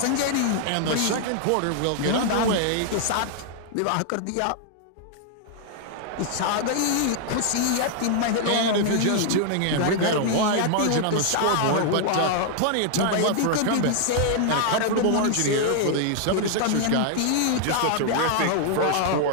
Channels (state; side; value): different; both; correlation 0.00